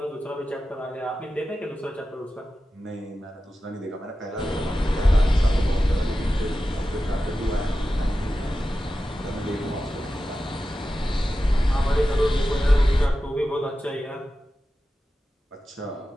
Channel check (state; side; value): normal; both; correlation 0.93